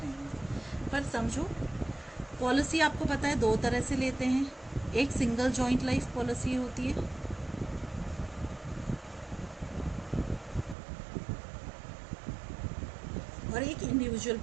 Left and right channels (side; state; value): left; drops out; at 10.8 s